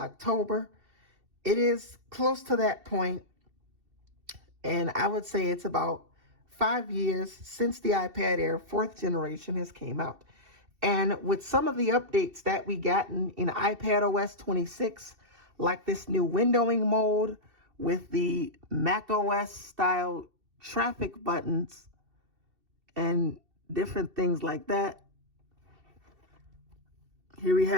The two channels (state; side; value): late; left; 2.7 ms